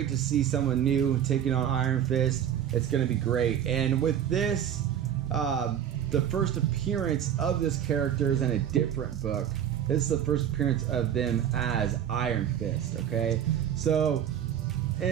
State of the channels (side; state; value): left; quieter; 9.7 dB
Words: to see someone new taking on Iron Fist. It's going to be great. And with this, the 1st appearance of this character is in a different book. This is the 1st appearance of them as Iron Fist, okay? So,